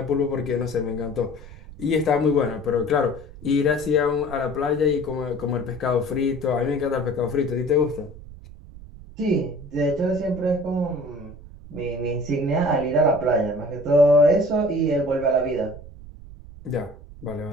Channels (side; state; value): right; noise; rumble, 17 dB below the sound